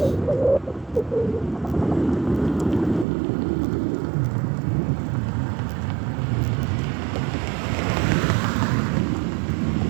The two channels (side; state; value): left; drops out; at 3.1 s